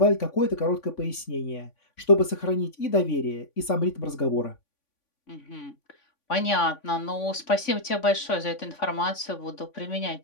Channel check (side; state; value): right; late; 3.5 ms